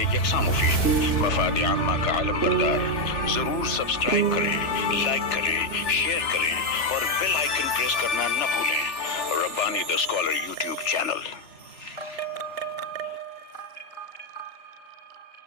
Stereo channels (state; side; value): late; right; 3.0 ms